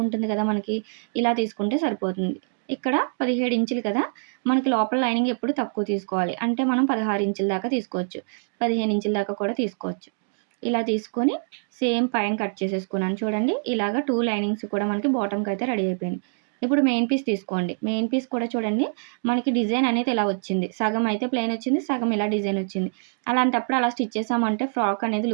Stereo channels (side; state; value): left; silent; digital silence